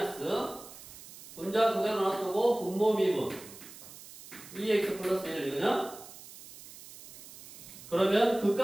분자 그대로 놔두고 분모 미분 2x 플러스 1 이거냐? 그러면 그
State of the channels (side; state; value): right; noise; hiss, 17 dB below the sound